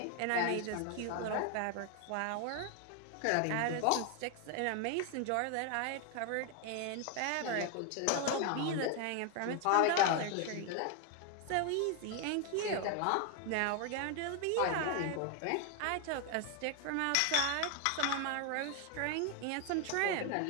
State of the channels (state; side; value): different; both; correlation 0.01